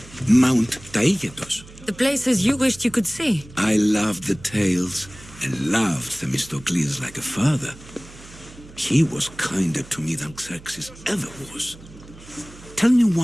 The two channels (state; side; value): noise; right; hum, 20 dB below the sound